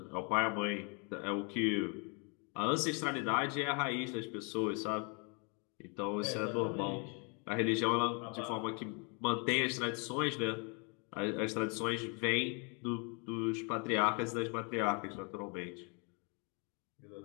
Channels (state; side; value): quieter; right; 34.7 dB